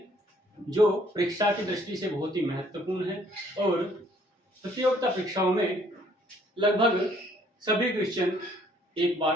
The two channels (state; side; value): normal; both; correlation 0.62